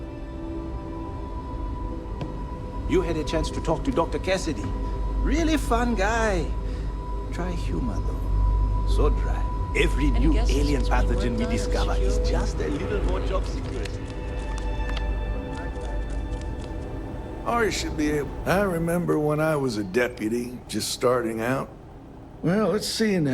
You had a chance to talk to Dr. Cassidy. Really fun guy. Try humor, though. So dry. Every new alien pathogen we discover is just a little more job security. Or you should be able. I remember when I was a deputy, just starting out. Well, let's see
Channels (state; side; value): identical; both; correlation 1.00